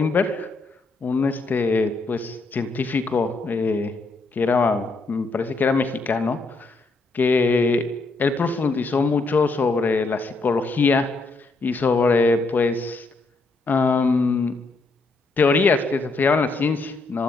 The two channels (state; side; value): quieter; right; 3.6 dB